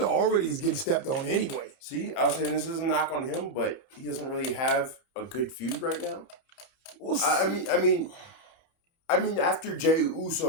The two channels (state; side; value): late; right; 29 ms